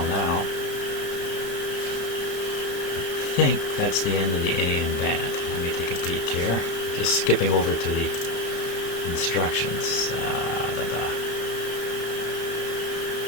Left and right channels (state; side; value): late; right; 33 ms